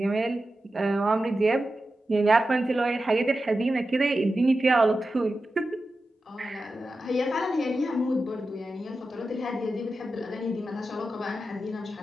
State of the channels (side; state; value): both; normal; correlation 0.92